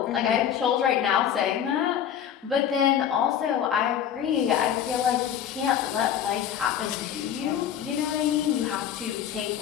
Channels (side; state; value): right; quieter; 9.3 dB